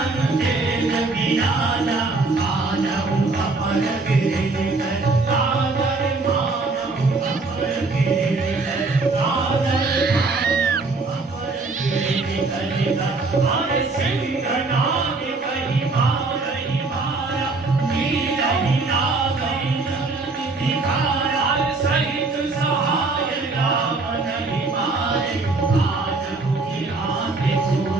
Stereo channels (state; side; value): quieter; left; 3.7 dB